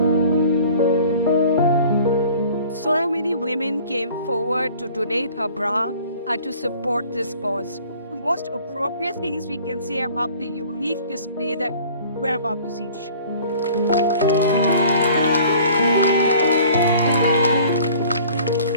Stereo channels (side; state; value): both; inverted; correlation -0.49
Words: So many women came forward to donate her bra and to support this cause. The most appropriate things we can say about the unique display that we're about to see.